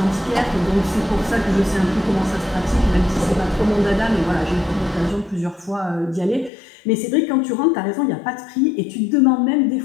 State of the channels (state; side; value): drops out; right; at 6.5 s